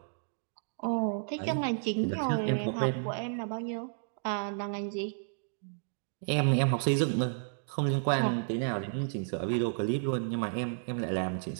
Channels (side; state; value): left; silent; digital silence